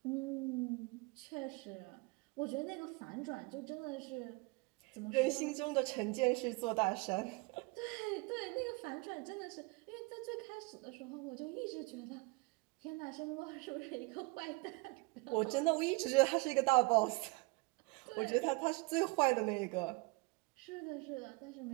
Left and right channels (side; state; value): left; quieter; 25.7 dB